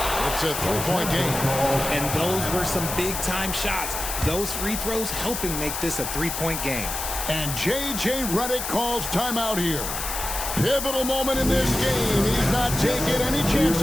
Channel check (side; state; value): left; noise; hiss, 4 dB below the sound